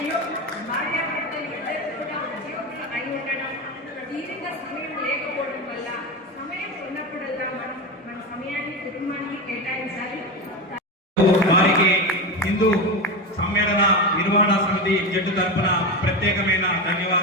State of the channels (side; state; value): both; normal; correlation 0.19